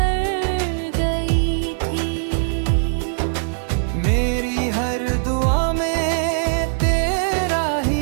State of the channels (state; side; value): silent; left; 64 dB below the other